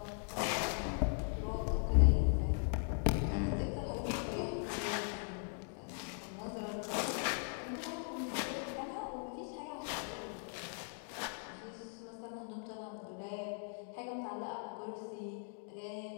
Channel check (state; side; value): silent; right; 52 dB below the other